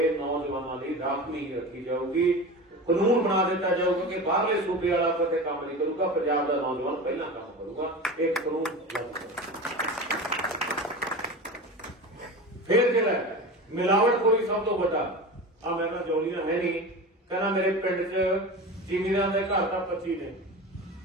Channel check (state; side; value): normal; both; correlation 0.30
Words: ਨੌਜਵਾਨਾਂ ਲਈ ਰਾਖਵੀਂ ਰੱਖੀ ਜਾਊਗੀ। ਕਾਨੂੰਨ ਬਣਾ ਦਿੱਤਾ ਜਾਊਗਾ ਕਿ ਬਾਹਰਲੇ ਸੂਬੇ ਵਾਲਾ ਕਿਤੇ ਕੰਮ ਨਹੀਂ ਕਰੂਗਾ, ਪੰਜਾਬ ਦਾ ਨੌਜਵਾਨ ਪਹਿਲਾਂ ਕੰਮ ਕਰੂਗਾ। ਇਹ ਕਾਨੂੰਨ ਫਿਰ ਜਿਹੜਾ ਮਿਲਾਵਟਖੋਰੀ ਸਭ ਤੋਂ ਵੱਡਾ ਆ, ਮੈਂ ਕਿਹਾ ਜੋਲੀਆਂ ਹੈ ਨਹੀਂ, ਕਹਿੰਦਾ ਮੇਰੇ ਪਿੰਡ 'ਚ ਜ਼ਿਮੀਂਦਾਰਾਂ ਦੇ ਘਰ ਤਾਂ 25 ਨੇ,